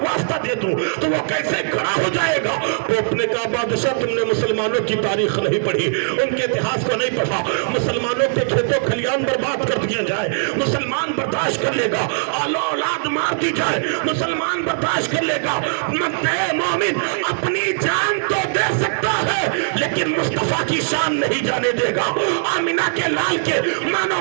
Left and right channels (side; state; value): left; silent; digital silence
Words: واسطہ دے دوں تو وہ کیسے کھڑا ہو جائے گا؟ پوپ نے کہا بادشاہ تم نے مسلمانوں کی تاریخ نہیں پڑھی, ان کے اتہاس کو نہیں پڑھا. مسلمانوں کے کھیتوں کھلیان برباد کر دیا جائے, مسلمان برداشت کر لے گا. آل اولاد مار دی جائے, مسلمان برداشت کر لے گا. مکہ مومن اپنی جان تو دے سکتا ہے لیکن مصطفیٰ کی شان نہیں جانے دے گا, آمینہ کے لال کے